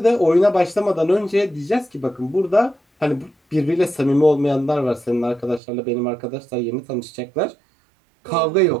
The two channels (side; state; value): left; drops out; at 5.6 s